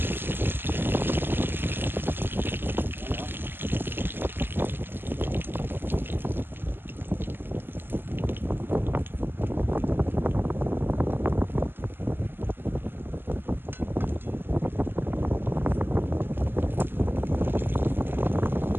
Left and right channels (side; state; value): left; late; 0.098 ms